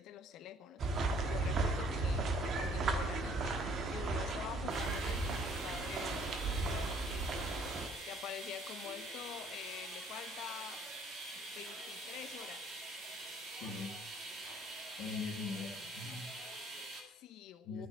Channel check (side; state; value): both; normal; correlation 0.60